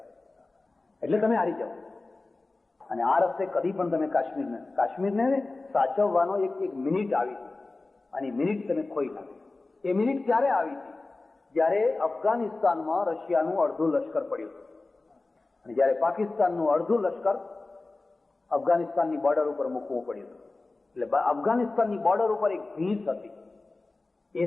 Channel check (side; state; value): right; quieter; 3.3 dB